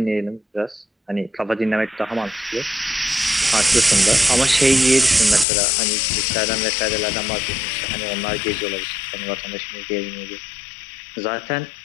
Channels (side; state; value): right; drops out; at 5.5 s